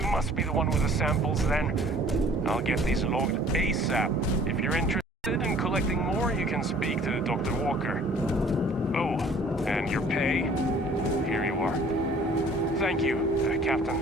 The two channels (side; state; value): both; normal; correlation 0.53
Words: must be the one with the samples then. I'll get these logged ASAP. If you're interested in collecting more, you can speak to Dr. Walker. Oh, and your pay? Here you are. Thank you,